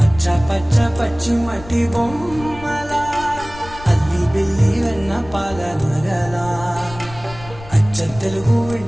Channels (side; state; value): left; noise; rumble, 16 dB below the sound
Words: పచ్చ పచ్చి మట్టి బొమ్మల అల్లి బిల్లి వెన్న పాల నగల అచ్చ తెలుగు